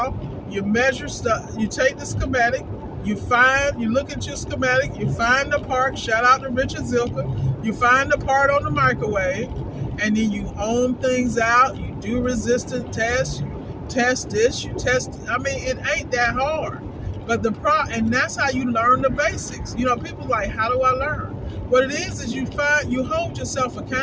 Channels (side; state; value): both; identical; correlation 1.00